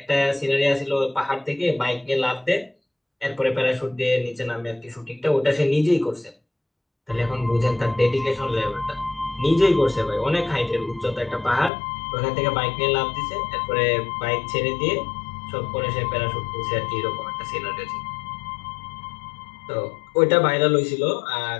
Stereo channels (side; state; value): right; drops out; at 11.7 s